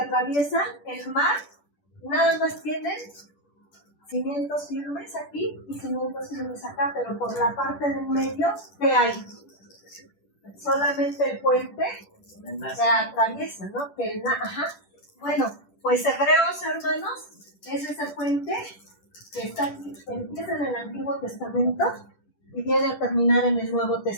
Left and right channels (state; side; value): late; right; 10 ms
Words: el mar, nada más tienen cimientos firmes aquí y cimientos firmes acá, pero por la parte del medio, ¿qué hay? Solamente el puente se atraviesa, ¿no? Bueno, pues Hebreos, hermanos, es ese puente que está aquí, empieza en el Antiguo Testamento y viene a terminar en el Nuevo